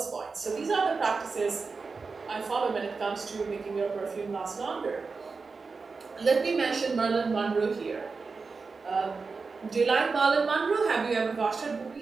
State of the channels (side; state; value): left; quieter; 4.5 dB